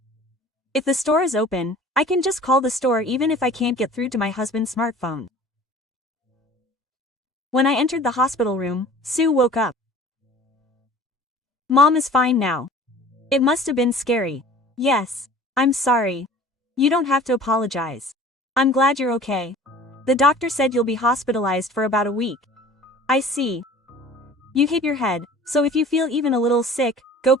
If the store is open, I can just call the store even if I can't get through to my husband's smartphone. When I entered the hospital room, Sue woke up. Mom is fine now. It must have been scary. Yes. I'm sorry. You don't have to apologize. I'm glad you're okay. The doctor said you'll be hospitalized for about a week. I see. You hit your head, so if you feel even a little sick, go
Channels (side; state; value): both; normal; correlation 0.45